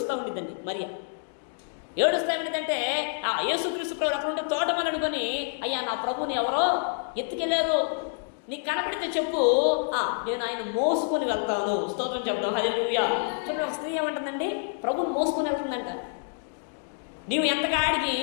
ఉండిద్దండి మరియా. ఏడుస్తా ఏమిటంటే యేసుక్రీస్తు ప్రభు అక్కడ ఉంటే తోటమని అనుకొని, అయ్యా నా ప్రభుని ఎవరో ఎత్తుకెళ్ళారు, నీకు కనపడితే చెప్పు, నేను ఆయన మోసుకొని వెళ్తాను. స్తోత్రం చెప్తాం. హల్లెలూయా. చూడండి, ఒక స్త్రీ ఏమంటుందండి? ప్రభుని మోసుకొని వెళ్తుందంట. నీవు ఎంతకాడికి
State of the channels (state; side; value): silent; right; digital silence